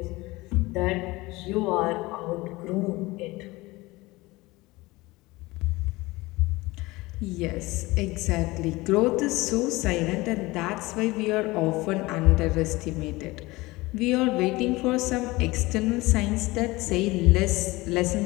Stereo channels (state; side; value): quieter; right; 21.2 dB